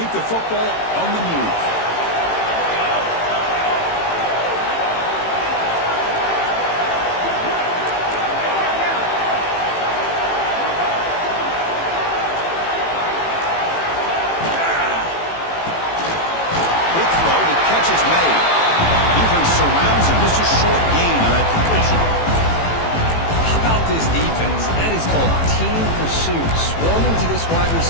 the football on the move. Surrounds him, just a short gain on that completion. How about this defense? That is called team pursuit. Swarming to this wide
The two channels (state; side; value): late; right; 18 ms